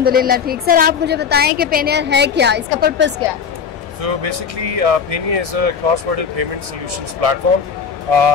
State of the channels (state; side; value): quieter; right; 6.5 dB